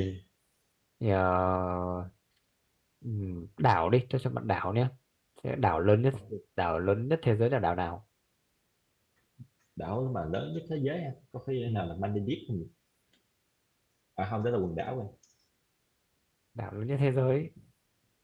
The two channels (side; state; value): both; identical; correlation 1.00